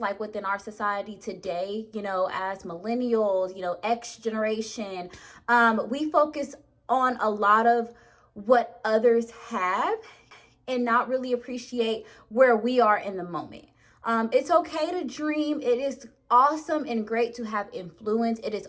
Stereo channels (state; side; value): identical; both; correlation 1.00